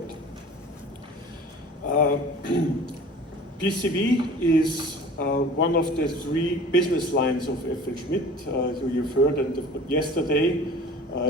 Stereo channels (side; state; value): both; normal; correlation 0.43